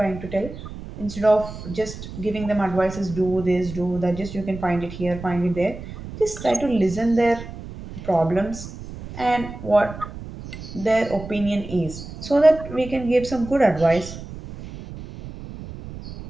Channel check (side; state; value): right; noise; rumble, 12 dB below the sound